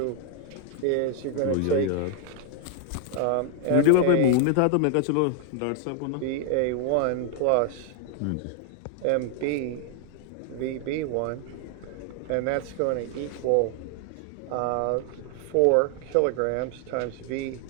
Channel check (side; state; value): both; different; correlation 0.00